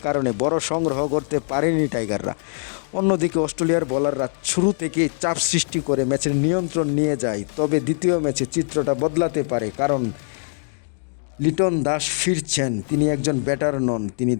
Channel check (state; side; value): silent; right; digital silence